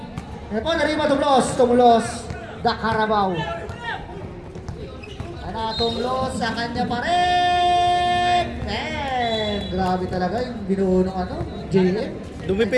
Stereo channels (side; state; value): both; identical; correlation 1.00